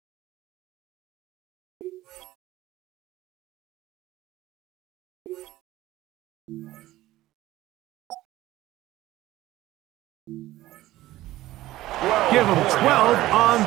Give them 12 on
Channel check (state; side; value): quieter; left; 16.1 dB